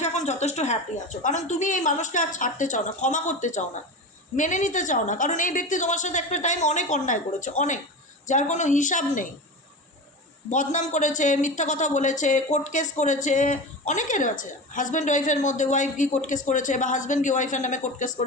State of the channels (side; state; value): both; normal; correlation 0.27